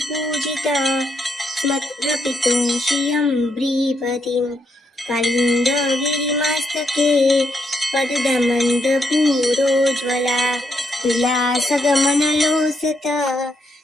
स्मत्प्रपितुं श्रियं ब्रीपतिं कालिन्दगिरिमस्तके पददमन्दपूरोज्ज्वला विलासगमनलोसत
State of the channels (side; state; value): both; normal; correlation 0.78